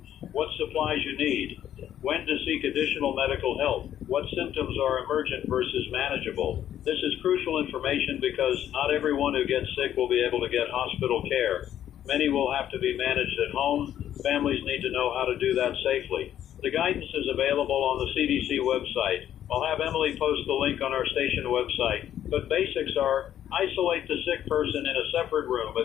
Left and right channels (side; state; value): right; quieter; 10.9 dB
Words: What supplies you need. When to seek additional medical help. What symptoms are emergent versus manageable. This is crucial information because not everyone who gets sick will be able to get hospital care. Many will have to be managed at home. Families need to know how to do that safely. The guidance is available on the CDC website. I'll have Emily post the link on our station website. But basics are: isolate the sick person in a separate room